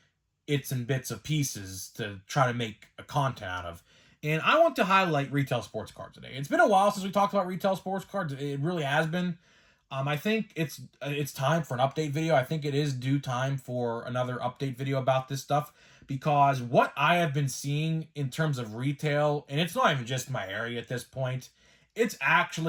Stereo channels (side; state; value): both; identical; correlation 1.00